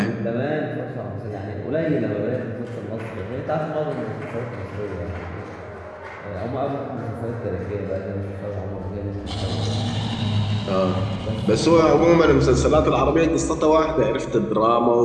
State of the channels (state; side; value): identical; both; correlation 1.00